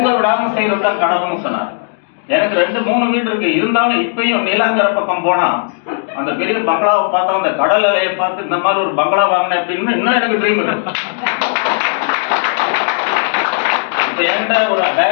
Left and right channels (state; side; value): silent; right; digital silence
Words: விடாம செய்யறதுதான் கனவுன்னு சொன்னார். எனக்கு 2-3 வீடு இருக்கு. இருந்தாலும் இப்பயும் நீலாங்கர பக்கம் போனா அந்த பெரிய பங்களாவை பார்த்தா, அந்த கடல் அலையை பார்த்து இந்த மாதிரி ஒரு பங்களா வாங்கினேன் அப்படின்னு இன்னும் எனக்கு ட்ரீம் இருக்கு. இப்ப என்கிட்ட ஒரு